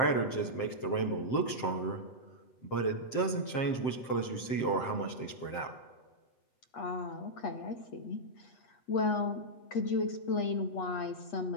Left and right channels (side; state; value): right; late; 7.6 ms